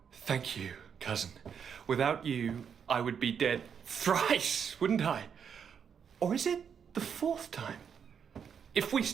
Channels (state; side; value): quieter; left; 7.3 dB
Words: Thank you, cousin. Without you, I would be dead thrice, wouldn't I? Or is it the fourth time? If we